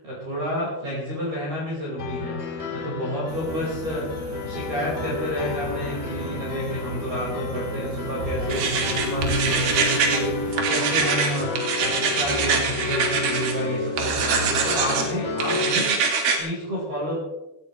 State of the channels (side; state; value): left; late; 13 ms